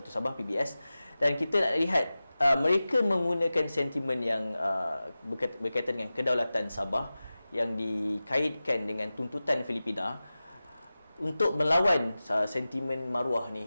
Sabah PBS. Dan kita nak lihat mereka menggunakan sentimen yang berkaitan dengan kedaulatan Sabah yang dikaitkan dengan tuntutan Filipina untuk melawan sentimen maruah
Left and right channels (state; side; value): inverted; both; correlation -0.96